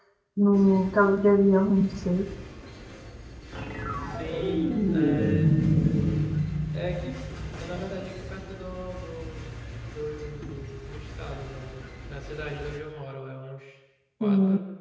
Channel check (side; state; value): both; identical; correlation 1.00